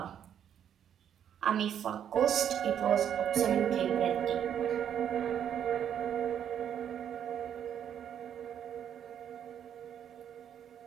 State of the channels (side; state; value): left; quieter; 9.3 dB